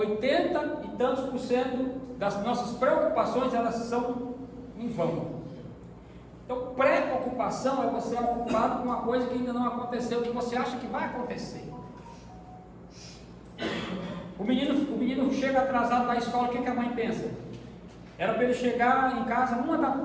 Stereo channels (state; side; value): identical; both; correlation 1.00